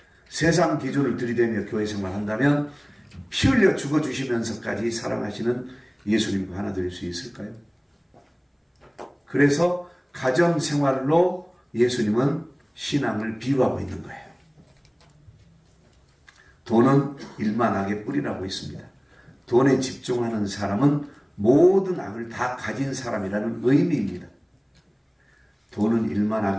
세상 기준을 들이대며 교회 생활한다면 피 흘려 죽어주시면서까지 사랑하시는 예수님과 하나 될 수 있을까요? 그래서 가정생활로 예수님은 신앙을 비유하고 있는 거예요. 돈은 일만 악의 뿌리라고 있습니다. 돈에 집중하는 사람은 모든 악을 다 가진 사람이라는 의미입니다. 돈은 일만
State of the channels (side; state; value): both; identical; correlation 1.00